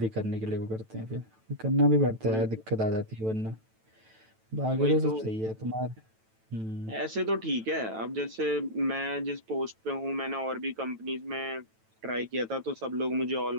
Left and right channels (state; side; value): late; left; 9.1 ms